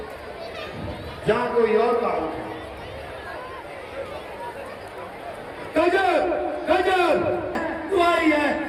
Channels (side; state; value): both; identical; correlation 1.00